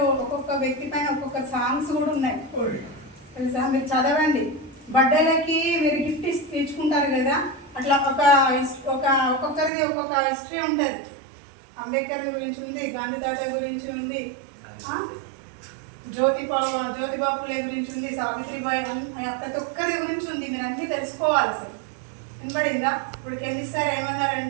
వ్యక్తి పైన ఒక్కొక్క సాంగ్స్ కూడా ఉన్నాయి తెలుసా. మీరు చదవండి. బర్త్డేలకి మీరు గిఫ్ట్ తెచ్చుకుంటారు కదా, అట్లా ఒక్కొక్కరిది ఒక్కొక్క హిస్టరీ ఉంటుంది. అంబేద్కర్ గురించి ఉంది, గాంధీ తాత గురించి ఉంది, జ్యోతిబాపులే గురించి ఉంది, సావిత్రిబాయి, ప్రతి ఒక్కరి గురించి ఉంది. మీరు అన్నీ తెలుసుకోవాలి. అసలు వినపడిందా? ఇప్పుడు కెమిస్ట్ సార్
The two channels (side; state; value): left; drops out; at 9.7 s